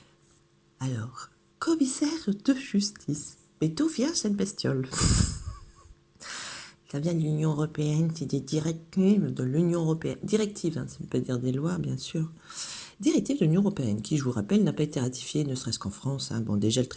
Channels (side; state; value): both; identical; correlation 1.00